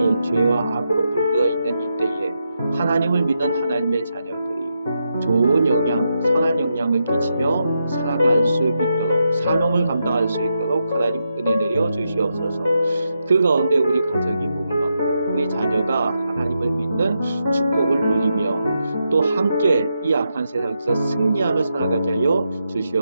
죄와 악으로 물들어 있는 이때에 하나님을 믿는 하나님의 자녀들이 좋은 영향, 선한 영향을 끼치며 살아갈 수 있도록, 사명을 감당할 수 있도록 하나님 은혜 내려 주시옵소서. 그 가운데 우리 가정이 복을 받고 우리 자녀가 하나님을 믿는 축복을 누리며 또 함께 이 악한 세상에서 승리하며 살아가게 하여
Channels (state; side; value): inverted; both; correlation -0.84